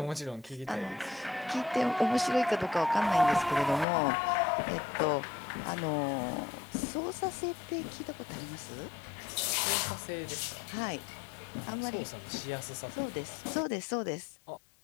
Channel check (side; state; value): right; drops out; at 3.9 s